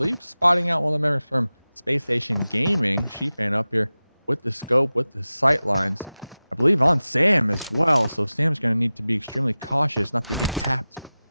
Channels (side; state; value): both; inverted; correlation -0.96